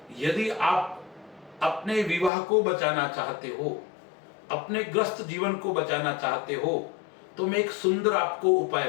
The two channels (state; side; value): drops out; right; at 2.3 s